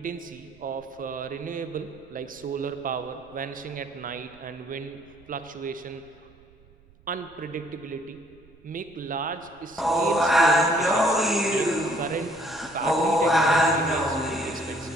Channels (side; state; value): right; noise; rumble, 28 dB below the sound